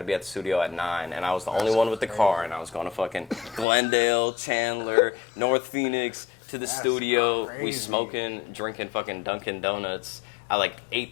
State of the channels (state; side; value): drops out; right; at 3.7 s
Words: be at the studio at 9, and I was the only one with the car, and I was going to fucking Glendale, Chandler, North Phoenix to the studio. crazy. We smoking, drinking fucking Dunkin' Donuts at like